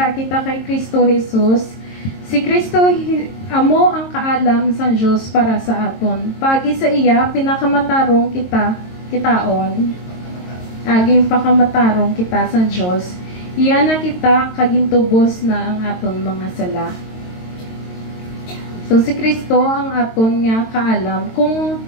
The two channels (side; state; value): right; late; 22 ms